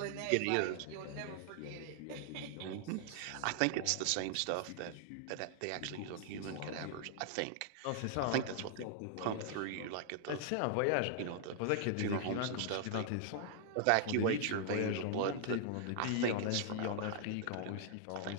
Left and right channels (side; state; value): both; different; correlation 0.00